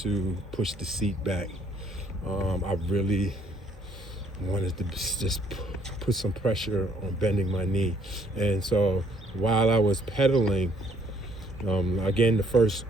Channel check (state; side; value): normal; both; correlation 0.65